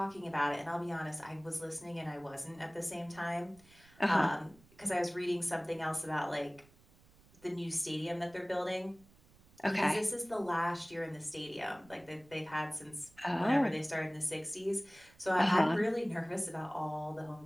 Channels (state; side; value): noise; right; rumble, 27 dB below the sound